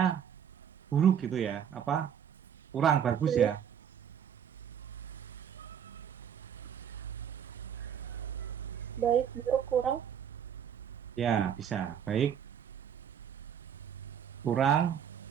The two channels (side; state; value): left; quieter; 8.6 dB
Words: buruk gitu ya. Apa? Kurang bagus ya. Baik, buruk, kurang. Ya, bisa. Baik, kurang,